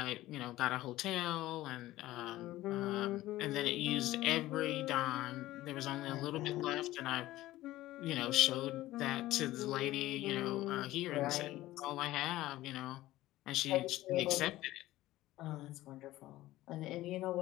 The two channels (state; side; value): quieter; right; 16.2 dB